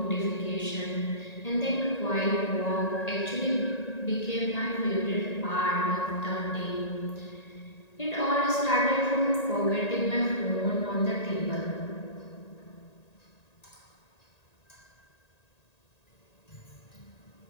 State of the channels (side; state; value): right; late; 1.9 ms